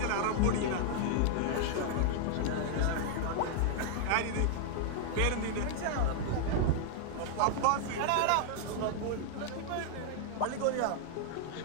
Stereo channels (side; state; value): both; different; correlation 0.00